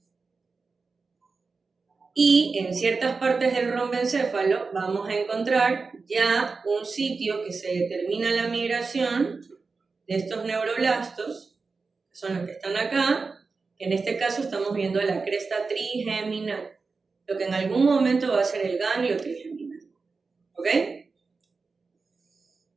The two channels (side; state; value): left; quieter; 4.4 dB